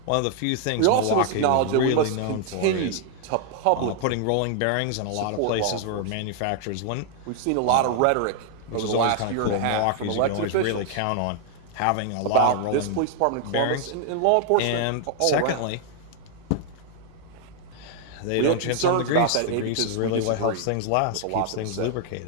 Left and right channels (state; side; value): different; both; correlation 0.00